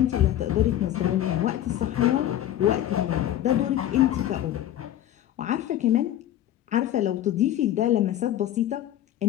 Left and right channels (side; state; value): right; quieter; 12.3 dB